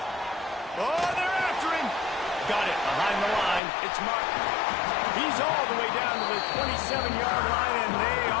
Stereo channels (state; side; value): drops out; right; at 3.6 s